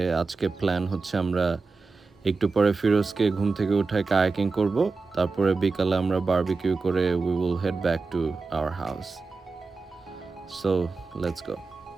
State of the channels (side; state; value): left; quieter; 4.2 dB